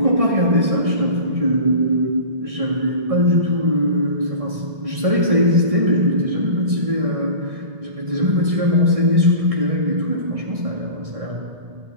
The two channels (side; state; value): left; late; 1.6 ms